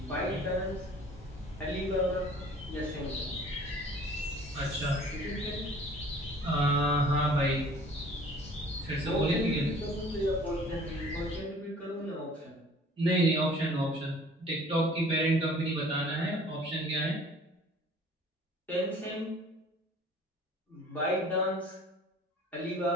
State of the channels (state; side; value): normal; both; correlation 0.50